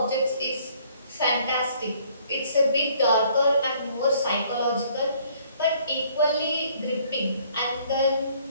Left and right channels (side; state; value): both; inverted; correlation -0.61